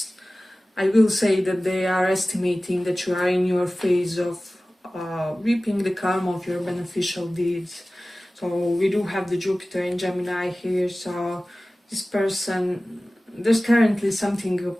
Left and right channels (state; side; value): normal; both; correlation 0.97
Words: I will say that they are estimating that you are in your phase of reaping the karma of your beneficial deeds. So we do have the Jupiter in Gemini here, so this person, there's currently something